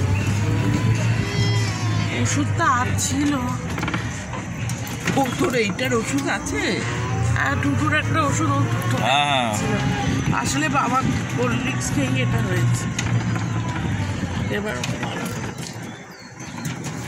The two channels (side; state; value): both; identical; correlation 1.00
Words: ওষুধটা ছিল, ও তোর এইটার ওষুধ আছে? হ্যাঁ, টুটুর একটা ওষুধ আসলে বাবা কোল্ড ড্রিঙ্কস খেয়ে এটা হয়েছে। এবার